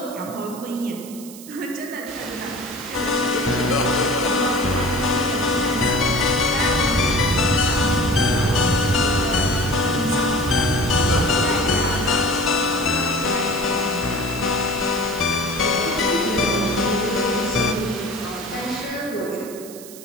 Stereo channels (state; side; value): noise; right; hiss, 16 dB below the sound